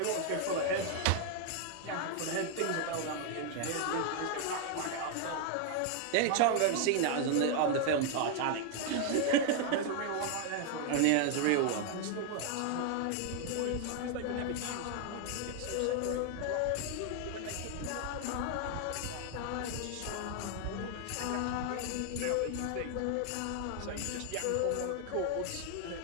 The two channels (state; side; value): different; both; correlation 0.00